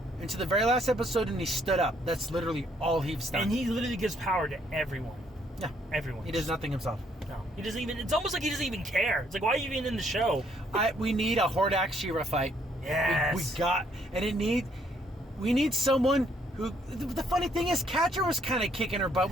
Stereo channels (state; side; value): normal; both; correlation 0.68